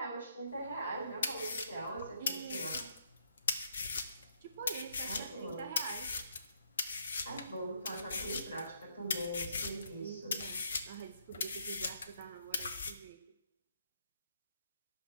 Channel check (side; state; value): both; inverted; correlation -0.72